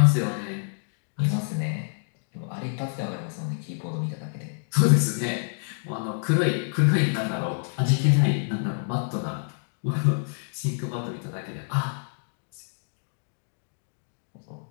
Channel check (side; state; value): right; silent; digital silence